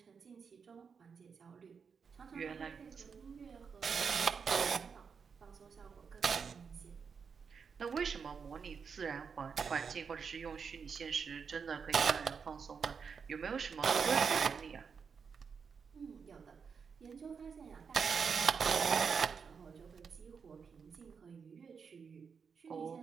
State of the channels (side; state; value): left; quieter; 6.0 dB